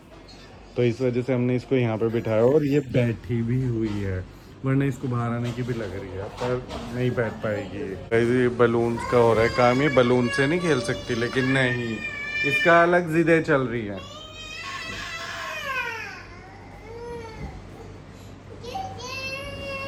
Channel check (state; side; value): identical; both; correlation 1.00